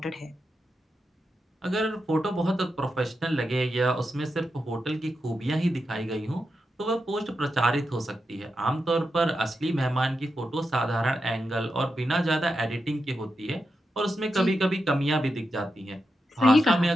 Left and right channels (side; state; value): both; normal; correlation 0.87